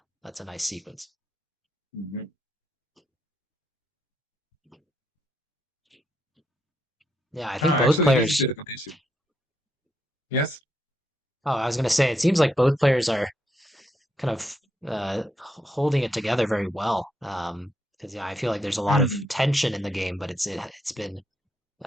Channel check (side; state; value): both; normal; correlation 0.78